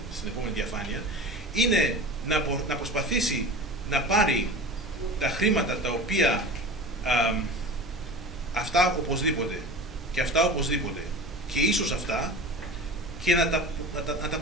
επόμενη διαφάνεια, είναι να προσπαθήσει να πάρει τα χρήματα τα οποία αυτά οπωσδήποτε και αυτά οπωσδήποτε και ίσως αυτά, και να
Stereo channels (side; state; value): both; normal; correlation 0.35